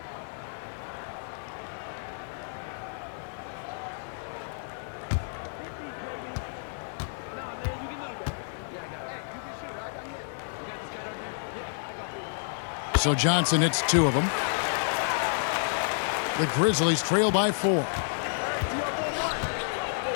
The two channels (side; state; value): right; silent; digital silence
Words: So Johnson hits 2 of them. The Grizzlies trail by 4.